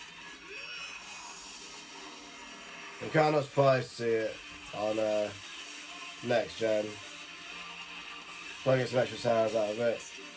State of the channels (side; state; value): both; identical; correlation 1.00